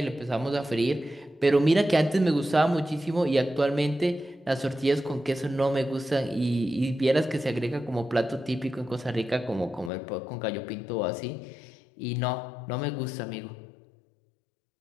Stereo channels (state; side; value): drops out; right; at 9.9 s